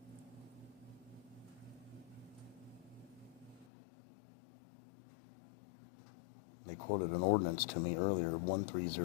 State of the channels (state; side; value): drops out; right; at 3.7 s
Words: They quoted an ordinance to me earlier,